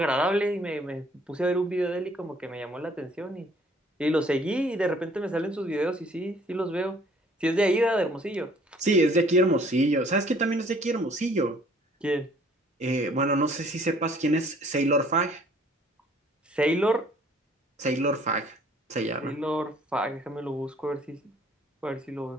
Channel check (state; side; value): normal; both; correlation 0.58